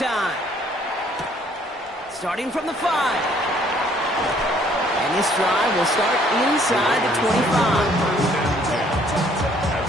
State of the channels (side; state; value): both; normal; correlation 0.62